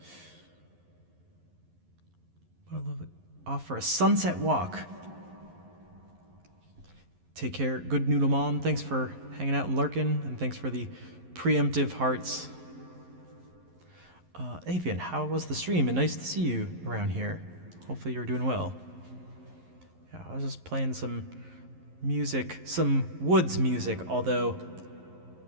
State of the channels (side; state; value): left; late; 11 ms